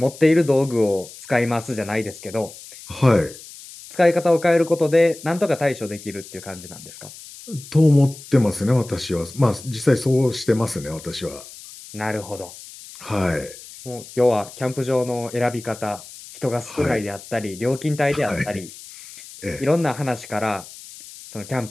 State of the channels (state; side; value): noise; left; hiss, 17 dB below the sound